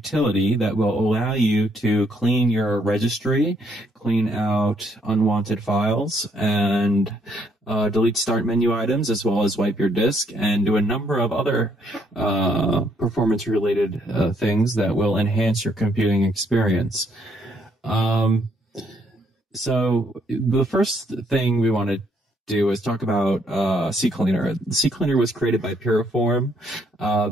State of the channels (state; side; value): normal; both; correlation 0.70